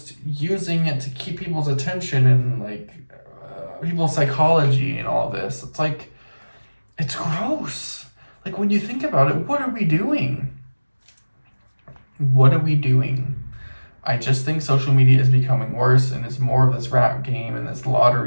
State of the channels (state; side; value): inverted; both; correlation -1.00